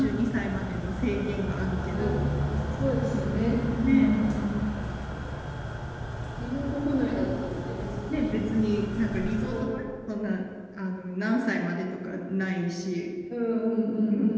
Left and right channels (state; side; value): identical; both; correlation 1.00